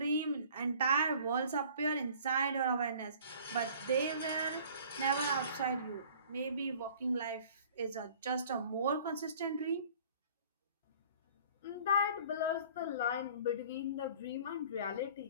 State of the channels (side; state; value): both; inverted; correlation -0.50